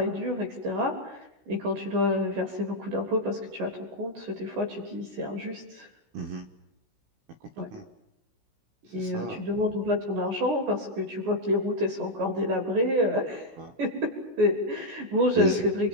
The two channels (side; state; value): left; late; 16 ms